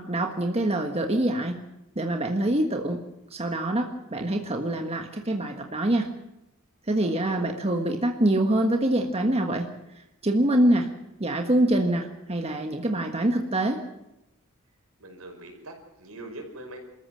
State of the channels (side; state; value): both; normal; correlation 0.70